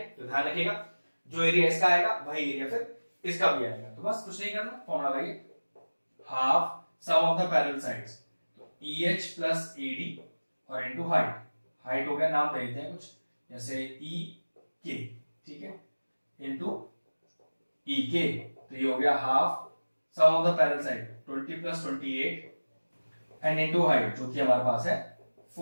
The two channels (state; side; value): inverted; both; correlation -1.00